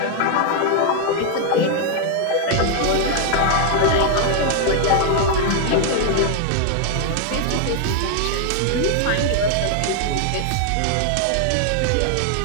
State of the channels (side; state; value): both; different; correlation 0.00